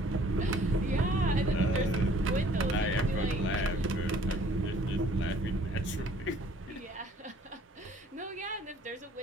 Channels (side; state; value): both; normal; correlation 0.56